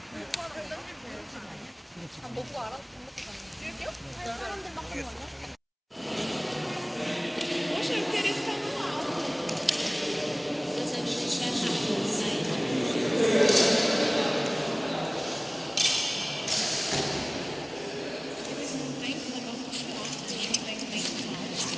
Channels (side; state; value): both; identical; correlation 1.00